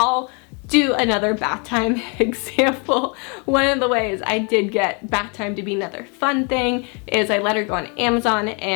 do another bath time example. One of the ways I did get bath time to be another fun thing is I let her go on Amazon,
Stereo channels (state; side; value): quieter; right; 34.8 dB